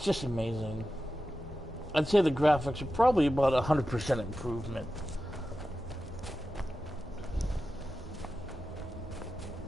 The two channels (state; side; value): normal; both; correlation 0.92